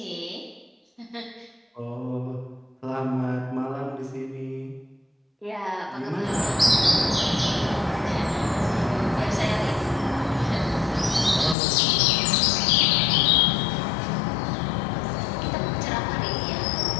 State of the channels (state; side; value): drops out; right; at 11.6 s